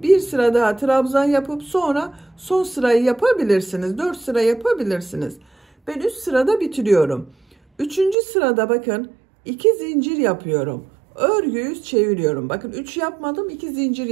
bir sıra daha trabzan yapıp sonra son sırayı yapabilirsiniz. 4 sıra yapabilirsiniz. Ben 3 sırada bitiriyorum. Üçüncü sırada bakın 2 zincir yapıyorum. Örgüyü çeviriyorum. Bakın 3 yapmadım, 2 zincir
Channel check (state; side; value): drops out; left; at 8.2 s